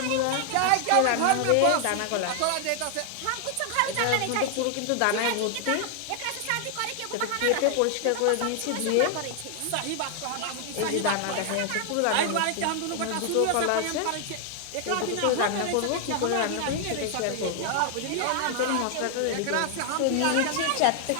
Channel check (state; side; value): different; both; correlation 0.00